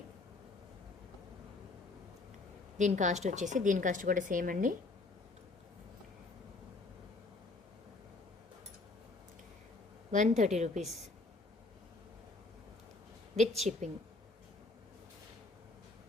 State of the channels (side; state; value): right; quieter; 3.3 dB